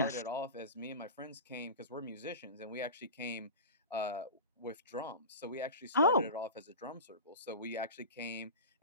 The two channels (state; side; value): inverted; both; correlation -0.30